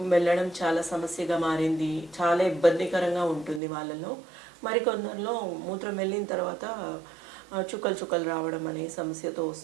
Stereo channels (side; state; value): left; drops out; at 3.6 s